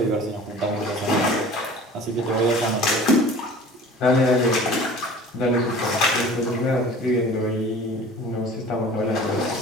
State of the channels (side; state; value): both; normal; correlation 0.43